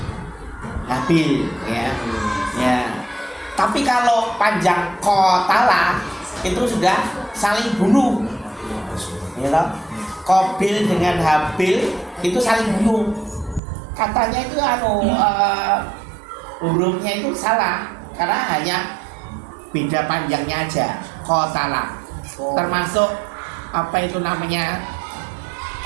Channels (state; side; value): drops out; left; at 13.6 s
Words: Habil, ya. Ya. Tapi kalau panjang kotala itu sudah saling bunuh, ya toh? Qabil dengan Habil itu saling bunuh. Katanya itu hurufnya itu salah karena hanya beda panjangnya aja. Kotala termasuk apa itu namanya